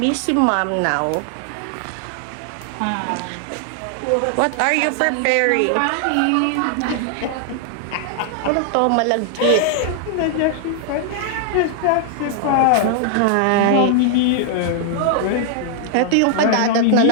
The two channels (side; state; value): both; different; correlation 0.00